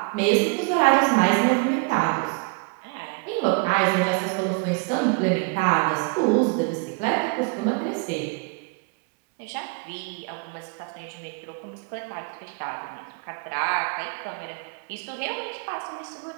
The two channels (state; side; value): quieter; left; 31.7 dB